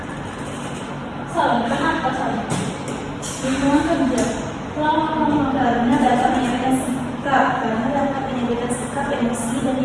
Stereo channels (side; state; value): both; identical; correlation 1.00